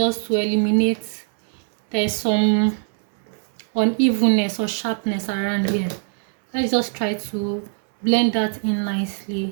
to eliminate there's some unevenness or sharpness around here. Let's just try to blend that in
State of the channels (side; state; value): left; silent; 64 dB below the other